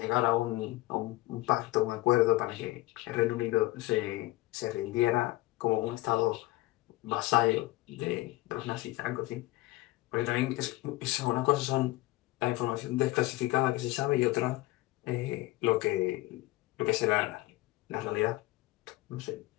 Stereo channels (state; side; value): quieter; right; 18.9 dB